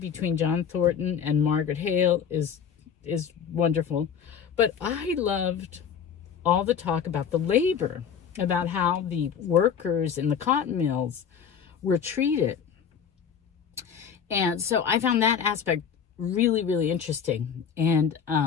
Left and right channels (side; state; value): right; quieter; 7.5 dB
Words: John Thornton and Margaret Hale is wonderful. But I loved all the talk about the labor, about how the workers in the cotton mills were treated. And so I found that aspect really, really interesting. And